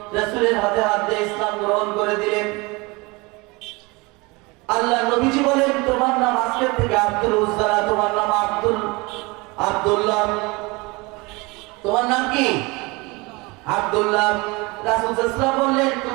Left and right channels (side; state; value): left; quieter; 25.5 dB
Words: রাসূলের হাতে হাত দিয়ে ইসলাম গ্রহণ করে দিলেন। আল্লাহ নবীজি বলেন, তোমার নাম আজকে থেকে আব্দুল উজ্জা, তোমার নাম আব্দুল্লাহ। তোমার নাম কি? আব্দুল্লাহ। রাসূল সাল্লাল্লাহু আলাইহি ওয়াসাল্লাম বললেন,